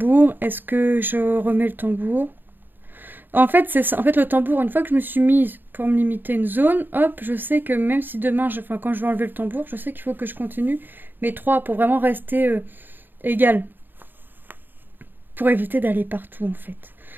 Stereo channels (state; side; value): late; left; 0.093 ms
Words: Est-ce que je remets le tambour? En fait, c'est ça. En fait, le tambour, une fois que je me suis mise pour me limiter une zone, hop, je sais que même si demain, enfin, quand je vais enlever le tambour, je sais qu'il faut que je continue mes 3 pour vraiment rester égal. Pour éviter d'aller partout, en fait.